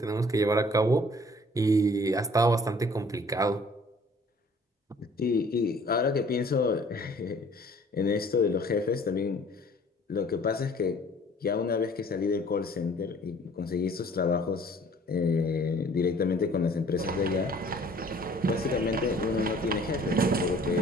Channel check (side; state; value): both; normal; correlation 0.54